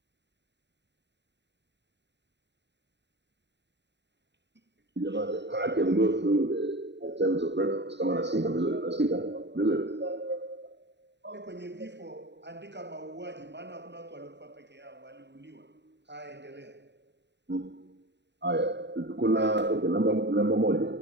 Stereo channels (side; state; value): left; late; 0.51 ms